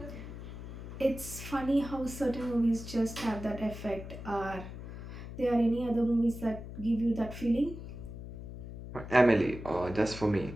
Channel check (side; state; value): left; noise; hum, 10 dB below the sound